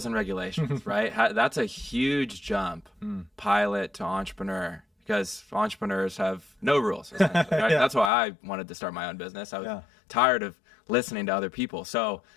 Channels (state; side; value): drops out; right; at 8.1 s